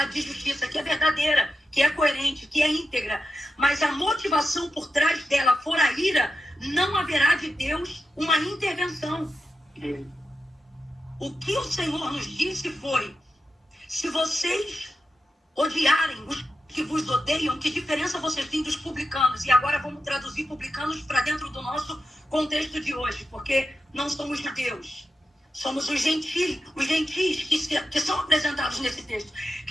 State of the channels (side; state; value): both; normal; correlation 0.90